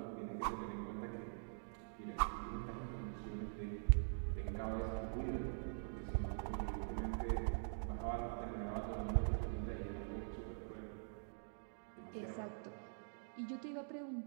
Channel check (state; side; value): silent; left; digital silence